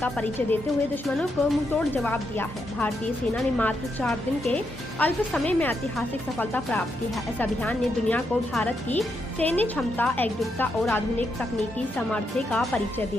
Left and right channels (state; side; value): normal; both; correlation 0.81